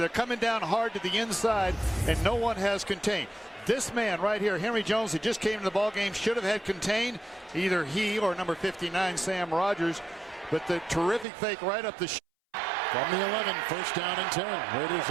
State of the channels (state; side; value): drops out; left; at 11.2 s